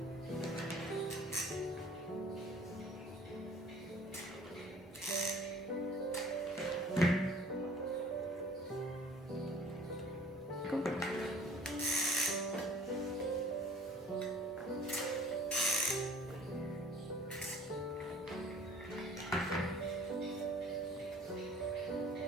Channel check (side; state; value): both; normal; correlation 0.50